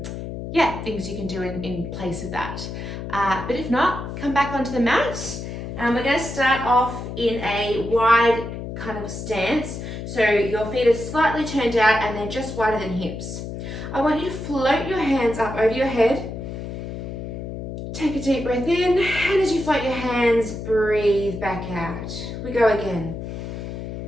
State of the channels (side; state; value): left; noise; hum, 7 dB below the sound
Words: things you can do in place of that. But if not, come back onto the mat. We're going to start off in a wide kind of stance. So your feet are slightly turned out and they're just wider than hips. I want you to float your hands up over your head. Take a deep breath in, and as you float your hands, breathe back out. We go again.